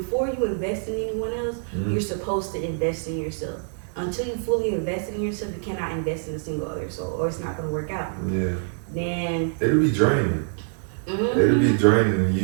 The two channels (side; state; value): left; silent; digital silence